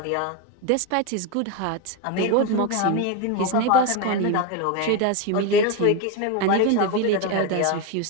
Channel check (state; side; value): different; both; correlation 0.02